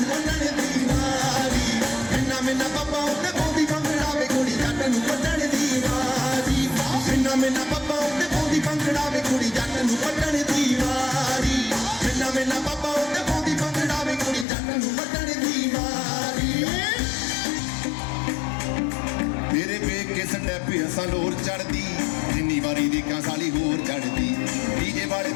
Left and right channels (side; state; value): right; drops out; at 14.5 s